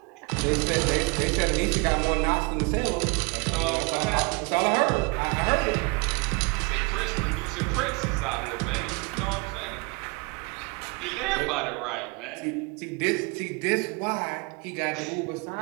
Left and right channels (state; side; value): quieter; left; 29.6 dB